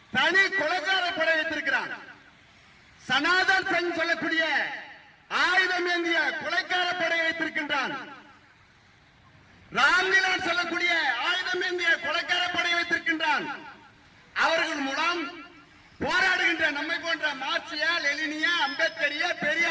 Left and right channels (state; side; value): identical; both; correlation 1.00